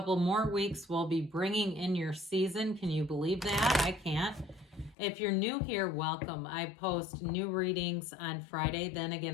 more weeks, we'll be bringing in your season. Can you believe that? I can't. If you're new here, welcome. I post new readings on Friday, then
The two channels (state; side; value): drops out; right; at 5.0 s